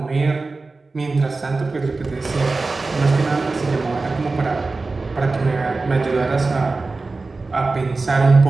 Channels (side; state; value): left; quieter; 3.7 dB